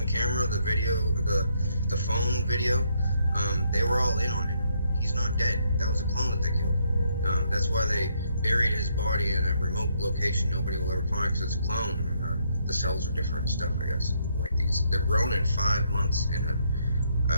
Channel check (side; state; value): both; inverted; correlation -0.73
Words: camera, the video, the phone video, they were all in on it. He's not dead. That was a clone that they killed. That's why they buried his body in a remote location nobody will ever find, because it's a clone. And, the cells are different and stuff, I guess. Like these, they're grown in 5 months in